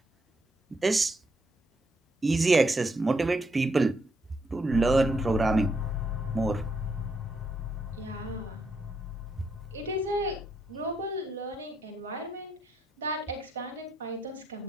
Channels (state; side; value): normal; both; correlation 0.77